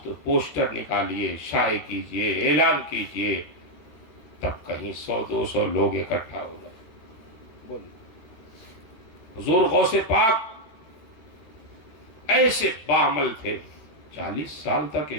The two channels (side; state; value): right; late; 13 ms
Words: تو پوسٹر نکالیے، شائع کیجئے، اعلان کیجئے، تب کہیں 100-200 لوگ اکٹھا ہو گئے. بولیے. حضور غوث پاک ایسے باعمل تھے، 40 سال تک